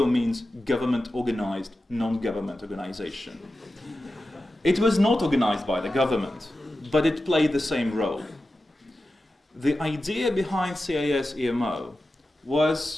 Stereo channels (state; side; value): normal; both; correlation 0.93